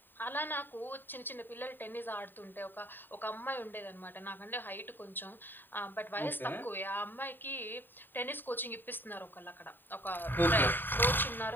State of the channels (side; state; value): right; late; 0.093 ms